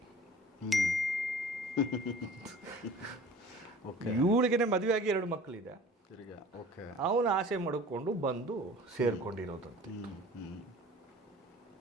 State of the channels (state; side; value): normal; both; correlation 0.45